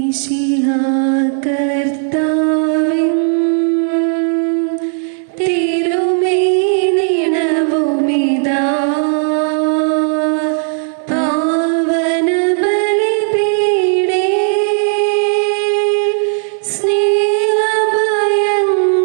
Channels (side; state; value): left; silent; 60 dB below the other